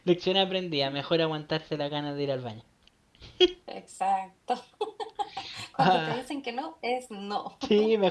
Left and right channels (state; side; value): identical; both; correlation 1.00